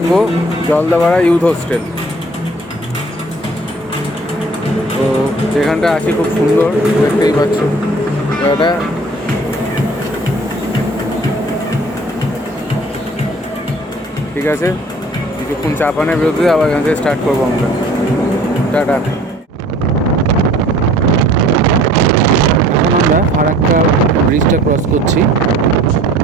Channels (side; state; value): both; normal; correlation 0.52